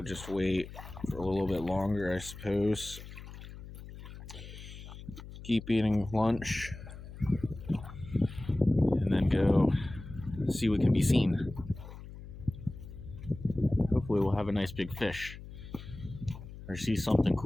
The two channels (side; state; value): left; noise; hum, 14 dB below the sound